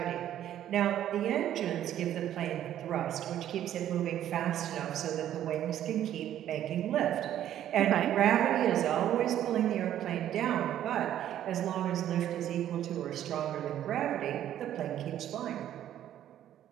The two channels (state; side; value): quieter; left; 11.4 dB